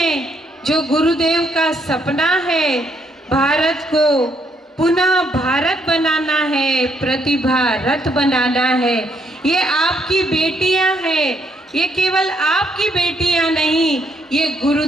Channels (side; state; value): both; normal; correlation 0.72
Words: जो गुरुदेव का सपना है, भारत को पुनः भारत बनाना है, प्रतिभा रथ बनाना है। ये आपकी बेटियां हैं, ये केवल आपकी बेटियां नहीं, ये